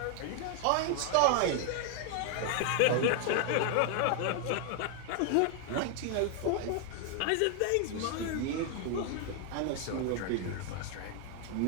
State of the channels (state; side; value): different; both; correlation 0.00